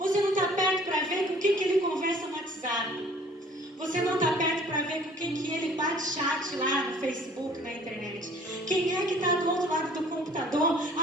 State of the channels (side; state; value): both; normal; correlation 0.53